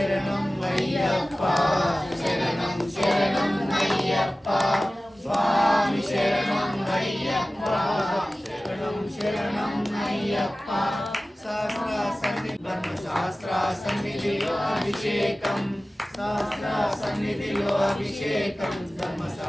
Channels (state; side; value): normal; both; correlation 0.97